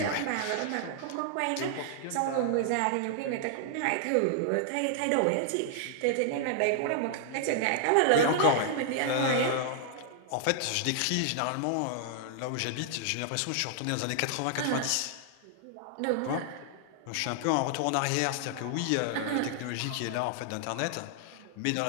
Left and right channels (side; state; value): both; different; correlation -0.01